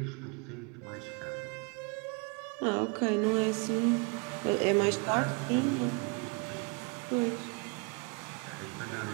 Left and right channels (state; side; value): quieter; left; 33.1 dB